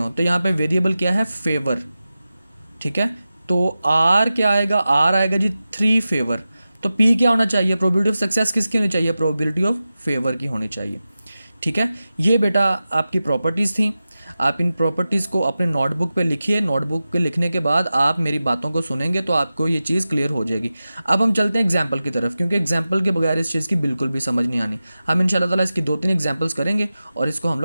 तो यहाँ पे वेरिएबल क्या है, फेवर। ठीक है, तो आर क्या आएगा, आर आएगा जी 3 फेवर। तो पी क्या होना चाहिए, प्रोबेबिलिटी ऑफ सक्सेस किसकी होनी चाहिए, प्रोबेबिलिटी ऑफ फेवर की होनी चाहिए। ठीक है, ये बेटा आपकी प्रॉपर्टीज़ थी। आप इन प्रॉपर्टीज़ को अपने नोटबुक पे लिखिए, नोटबुक पे लिखने के बाद आप मेरी बातों को सुनेंगे तो आपको ये चीज़ क्लियर हो जाएगी। अब हम चलते हैं एग्जाम्पल की तरफ, क्योंकि एग्जाम्पल के बगैर इस चीज़ की बिल्कुल भी समझ नहीं आनी। हम इंशाल्लाह ताला इसकी 2-3 एग्जाम्पल्स करेंगे और इसको हम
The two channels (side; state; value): both; inverted; correlation -0.94